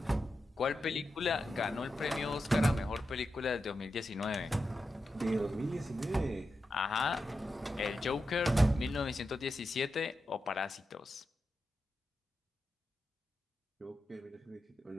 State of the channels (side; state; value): both; normal; correlation 0.89